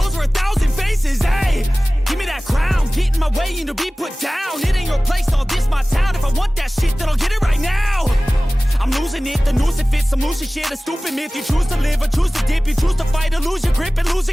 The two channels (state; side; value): normal; both; correlation 0.98